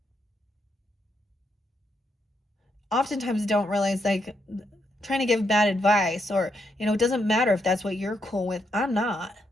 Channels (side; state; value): both; normal; correlation 0.79